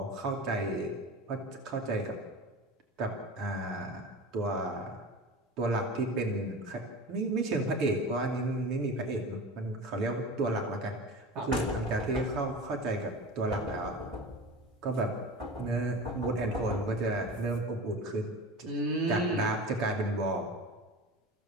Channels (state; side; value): normal; both; correlation 0.33